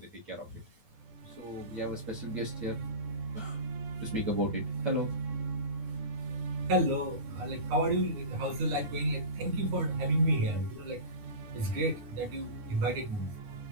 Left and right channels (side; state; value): left; late; 9.6 ms